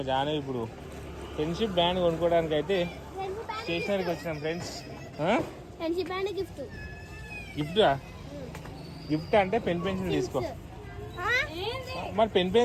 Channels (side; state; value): both; identical; correlation 1.00